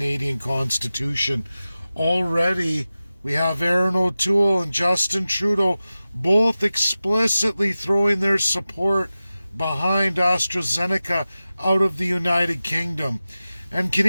Constitution. Already, we have Erin O'Toole and Justin Trudeau both explicitly throwing their support behind AstraZeneca out of the United Kingdom. And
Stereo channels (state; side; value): inverted; both; correlation -0.95